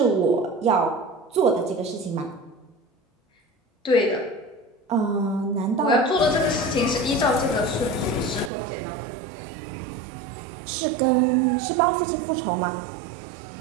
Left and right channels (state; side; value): drops out; left; at 8.5 s